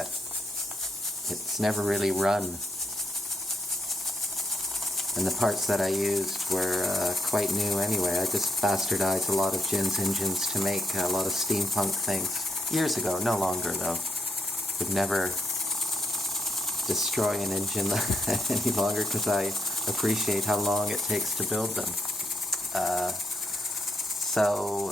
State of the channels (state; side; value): normal; both; correlation 0.79